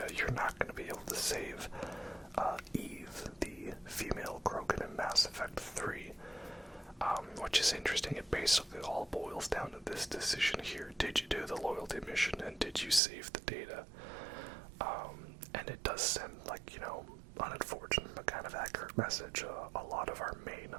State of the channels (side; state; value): left; drops out; at 13.0 s